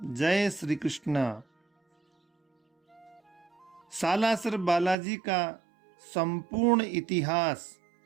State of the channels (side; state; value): left; drops out; at 5.0 s